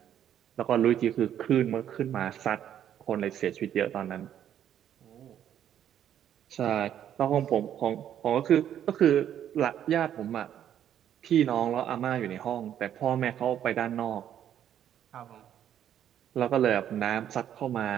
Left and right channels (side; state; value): left; quieter; 10.2 dB